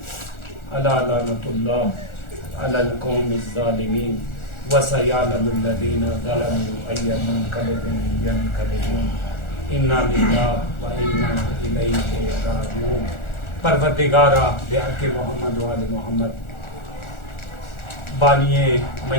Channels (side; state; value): right; late; 1.4 ms